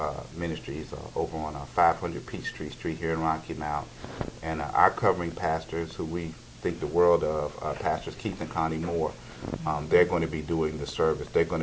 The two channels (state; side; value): identical; both; correlation 1.00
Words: Ministries over on 500 Peachtree Street here in Rocky Mount. And our covering pastors, who we think the world of, Pastors Keith and Connie Moore, they're going to be doing the service. They're going